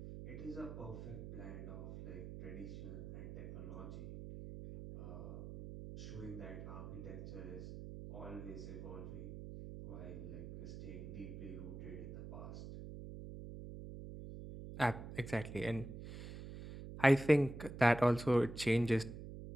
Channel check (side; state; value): right; noise; hum, 10 dB below the sound